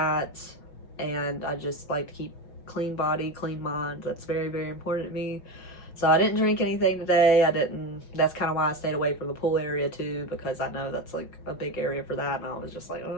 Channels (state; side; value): late; right; 5.6 ms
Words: And I just like to keep clean body, clean mind. That's very, very important to me. So I didn't drink anything today. That's kind of why I stayed away from the pool area too, because I know that's like a big area for that. And I was just like, oh,